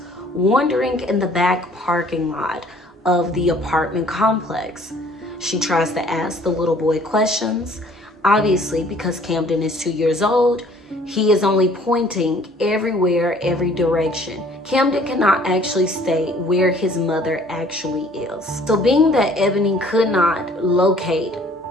wandering in the back parking lot of the apartment complex. She tries to ask the little boy questions. Obviously, because Camden is 2 years old, he is only pointing everywhere, every direction. Camden cannot actually state where his mother actually is. So being that Ebony could not locate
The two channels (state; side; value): normal; both; correlation 0.56